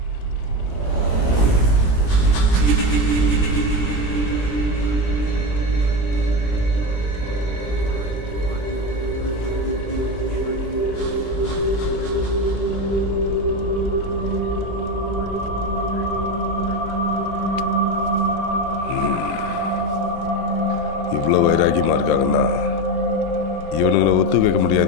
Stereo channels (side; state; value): right; late; 17 ms